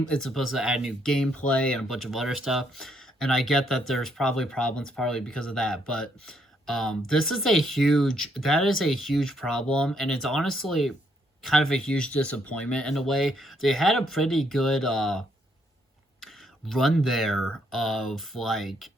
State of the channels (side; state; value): both; normal; correlation 0.72